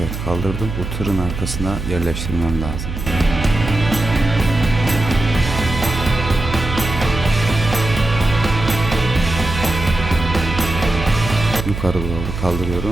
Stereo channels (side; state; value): right; noise; hum, 6 dB below the sound